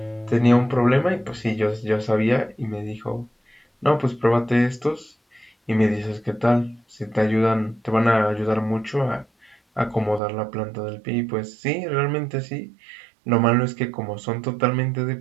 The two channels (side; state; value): left; drops out; at 10.2 s